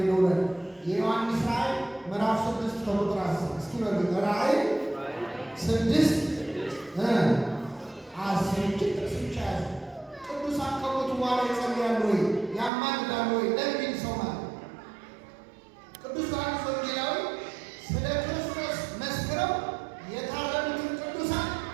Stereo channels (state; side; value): drops out; left; at 12.7 s